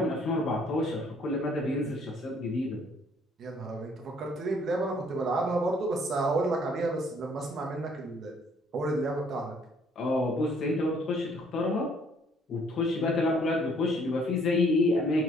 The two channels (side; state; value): both; normal; correlation 0.62